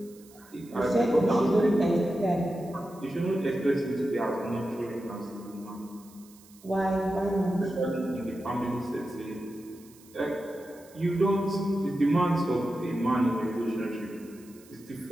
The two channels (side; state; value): right; noise; hiss, 25 dB below the sound